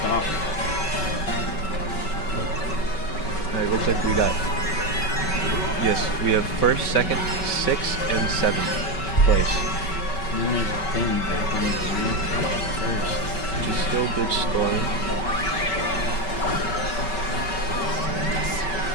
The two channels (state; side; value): late; right; 5.3 ms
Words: Alright, looks like we got, yes, we have first, second, sixth, and seventh place, And then there's Ben back on the first. which is still good scoring.